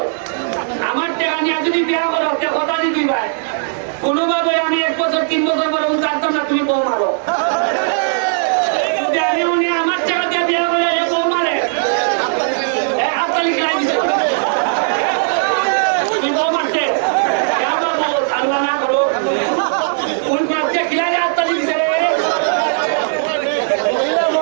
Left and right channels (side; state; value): left; silent; digital silence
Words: আমার টাকা নিয়ে যদি বিয়া করো কথা দিবি ভাই, কোনোভাবে আমি 1 বছর 3 বছর পরে জানতাম না তুমি বউ মারো। যদি আমি উনি আমার টাকা দিয়ে বিয়া করে বউ মারে, হাততালি খেলাই দিচ্ছে তুমি বউ মারতে আল্লাহ না করো, কোন মারতে খেলাই হাততালি দিচ্ছে।